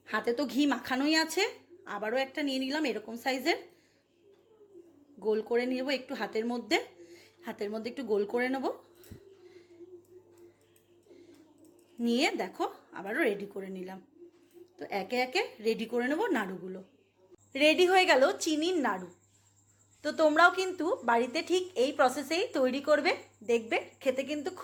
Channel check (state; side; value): identical; both; correlation 1.00